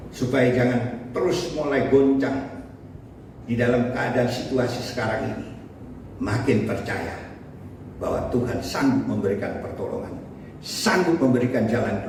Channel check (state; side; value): identical; both; correlation 1.00